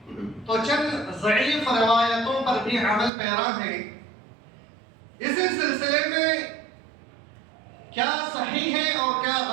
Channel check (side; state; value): left; drops out; at 3.1 s